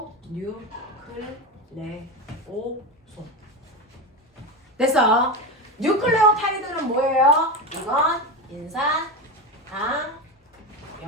뉴, 클, 레, 오, 솜. 됐어? 뉴클레오타이드는 뭐예요? 이건 인산, 당,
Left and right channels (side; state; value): both; normal; correlation 0.19